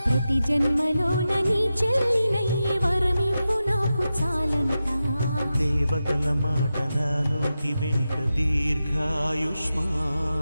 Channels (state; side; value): inverted; both; correlation -0.91